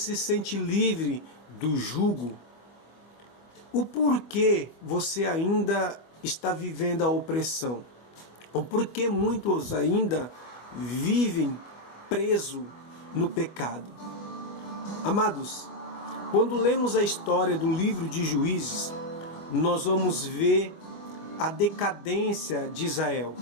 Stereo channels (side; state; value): right; late; 25 ms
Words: sente livre do jugo? O porquê você ainda está vivendo a opressão? O porquê muitos ainda vivem presos no pecado? Amados, quando lemos a história do livro de Juízes, nós vamos ver a decadência de Israel,